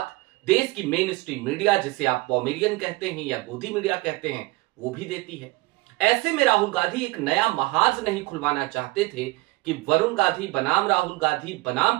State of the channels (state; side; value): quieter; left; 22.0 dB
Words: देश की मेन स्ट्रीम मीडिया, जिसे आप पॉमेरियन कहते हैं या गोदी मीडिया कहते हैं, वो भी देती है। ऐसे में राहुल गांधी एक नया महाज नहीं खुलवाना चाहते थे कि वरुण गांधी बनाम राहुल गांधी